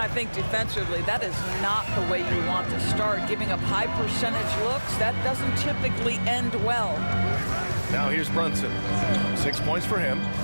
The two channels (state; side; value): inverted; both; correlation -1.00